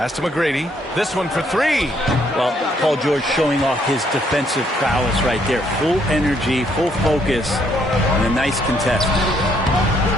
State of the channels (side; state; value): both; normal; correlation 0.70